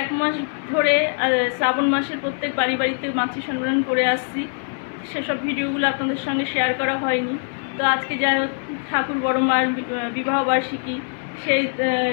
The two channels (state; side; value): silent; right; digital silence